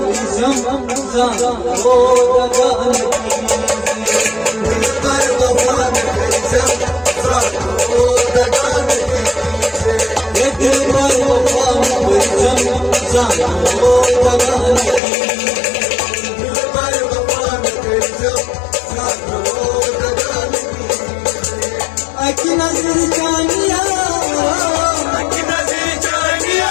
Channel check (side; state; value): right; drops out; at 15.0 s